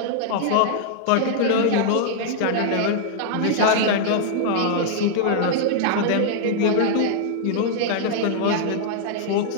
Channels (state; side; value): different; both; correlation -0.01